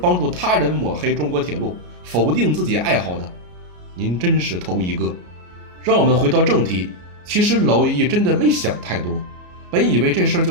助他人抹黑中国铁路，否定自己爱好的，您真是头一个。让我们回到正题，其实老一真的没想太多，本以为这事儿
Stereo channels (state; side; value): late; left; 33 ms